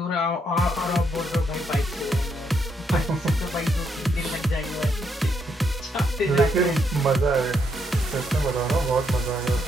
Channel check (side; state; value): both; normal; correlation 0.76